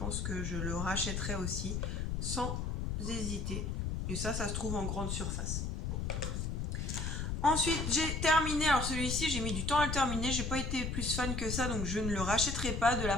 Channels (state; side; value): noise; left; rumble, 2 dB below the sound